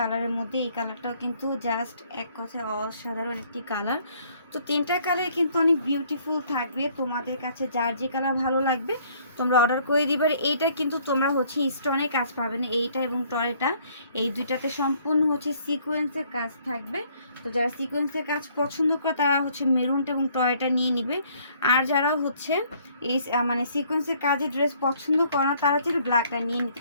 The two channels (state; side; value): inverted; both; correlation -0.62